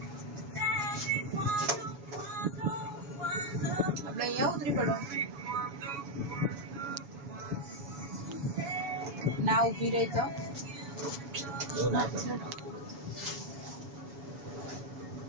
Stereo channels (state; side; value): late; left; 7.1 ms